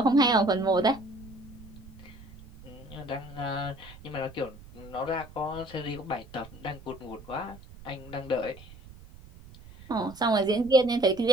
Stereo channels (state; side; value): noise; right; rumble, 19 dB below the sound